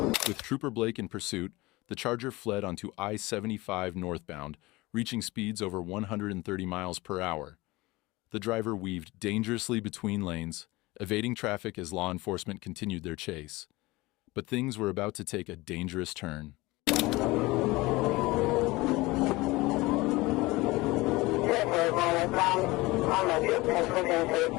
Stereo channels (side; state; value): right; quieter; 21.4 dB